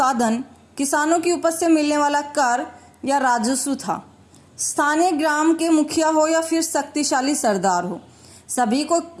किसानों की उपज से मिलने वाला कर या राजस्व था। स्थानीय ग्राम के मुखिया हो या फिर शक्तिशाली सरदार हो, सभी को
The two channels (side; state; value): both; identical; correlation 1.00